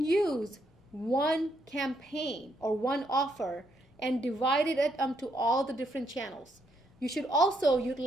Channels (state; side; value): normal; both; correlation 0.75